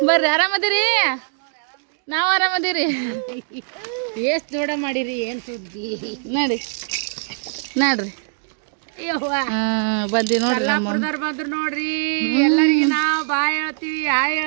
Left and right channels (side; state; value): left; silent; digital silence